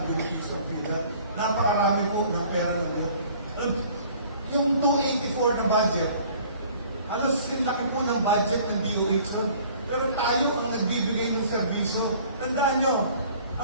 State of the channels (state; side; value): inverted; both; correlation -0.52